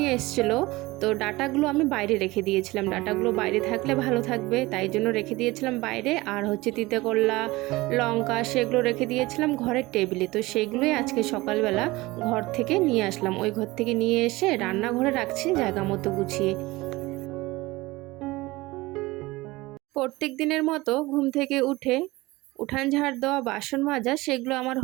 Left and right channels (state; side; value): quieter; left; 20.7 dB